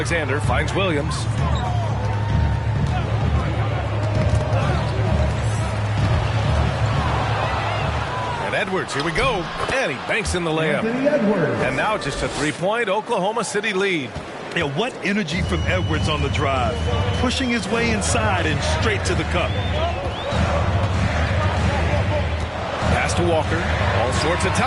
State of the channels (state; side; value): identical; both; correlation 1.00